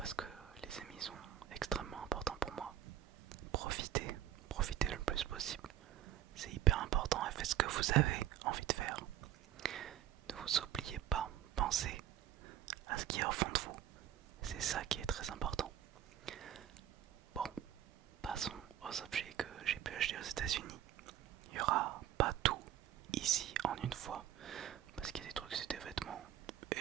que les amis sont extrêmement importants pour moi. Profitez le plus possible. C'est hyper important et faites ce que vous avez envie de faire. Ne vous oubliez pas, pensez à ce qui est au fond de vous. C'est ça qui est très important. Bon, passons aux objets que j'ai pu acheter aux États-Unis. Il n'y aura pas tout ici en une fois, parce qu'il y a des trucs, c'est des vêtements.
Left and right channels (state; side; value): quieter; left; 11.3 dB